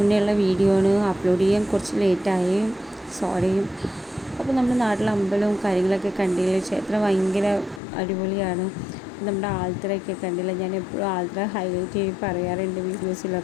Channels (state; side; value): drops out; right; at 7.8 s